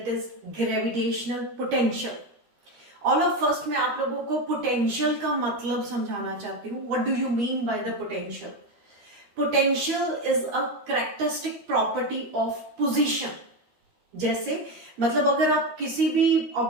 is gravitational potential. All of first मैं आप लोगों को पोटेंशियल का मतलब समझाना चाहती हूँ। What do you mean by the potential? Potential is a characteristic property of position. जैसे मतलब अगर आप किसी भी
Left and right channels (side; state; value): left; late; 13 ms